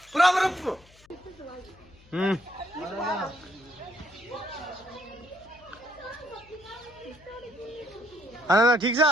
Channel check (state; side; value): noise; left; hum, 26 dB below the sound